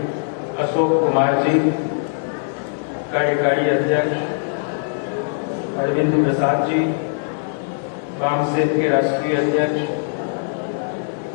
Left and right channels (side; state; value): right; silent; digital silence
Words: अशोक कुमार जी, कार्यकारी अध्यक्ष अरविंद प्रसाद जी, वामसेन के राष्ट्रीय अध्यक्ष